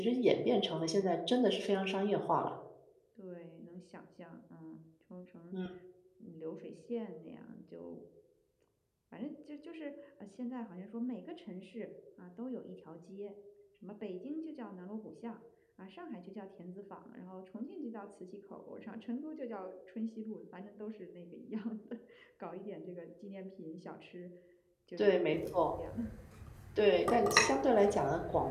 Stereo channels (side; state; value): both; identical; correlation 1.00